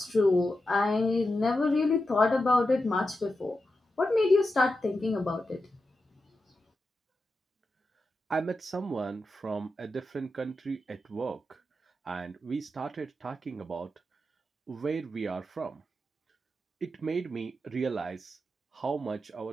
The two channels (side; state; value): both; normal; correlation 0.89